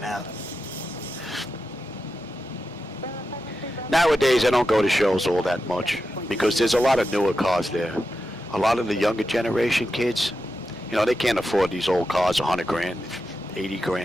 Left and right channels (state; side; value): normal; both; correlation 0.89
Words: out. Nowadays, I don't go to shows all that much because there's a lot of newer cars there. A lot of the younger generation kids, you know, they can't afford these old cars, 100 grand, 80